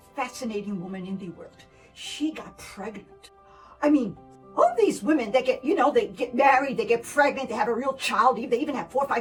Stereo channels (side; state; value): both; identical; correlation 1.00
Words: fascinating woman in the world. She got pregnant. I mean, all these women that they get married, they get pregnant, they have a real child, they even have 4,